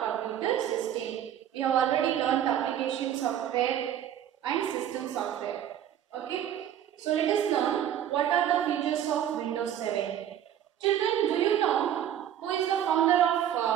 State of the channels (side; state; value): left; quieter; 10.5 dB